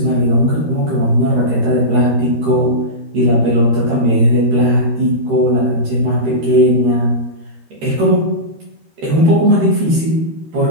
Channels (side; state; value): left; late; 13 ms